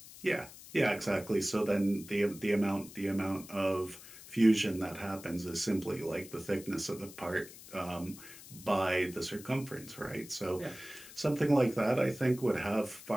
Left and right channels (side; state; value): left; noise; hiss, 17 dB below the sound